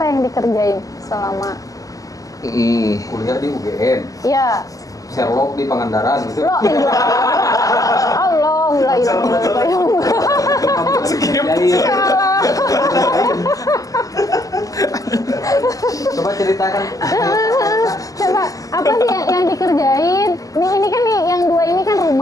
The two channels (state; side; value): late; right; 0.17 ms